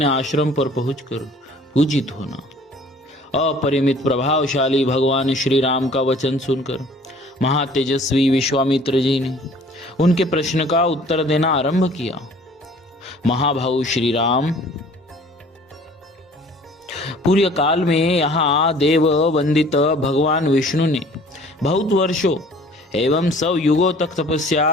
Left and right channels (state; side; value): normal; both; correlation 0.52